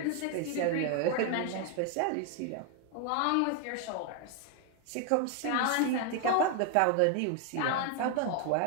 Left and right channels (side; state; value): both; different; correlation 0.01